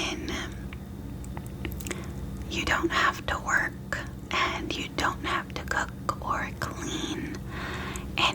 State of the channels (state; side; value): identical; both; correlation 1.00